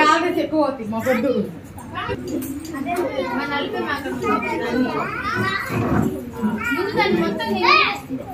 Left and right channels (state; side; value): identical; both; correlation 1.00